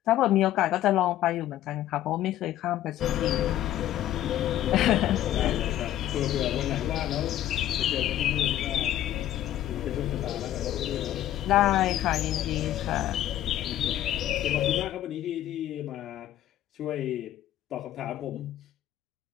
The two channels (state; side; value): quieter; right; 12.9 dB